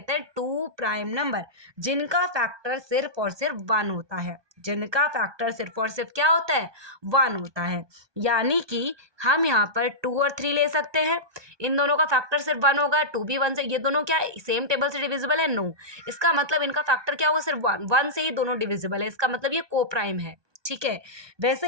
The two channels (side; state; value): left; late; 1.2 ms